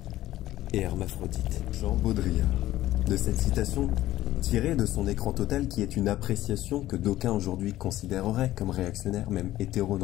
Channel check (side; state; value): right; quieter; 14.7 dB